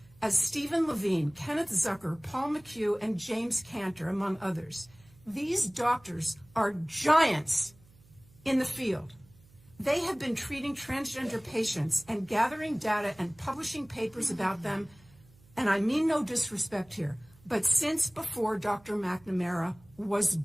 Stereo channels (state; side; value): noise; right; hum, 27 dB below the sound